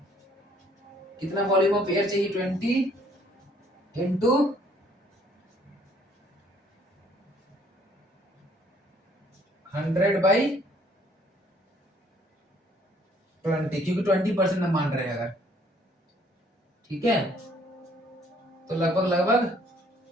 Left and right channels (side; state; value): both; normal; correlation 0.62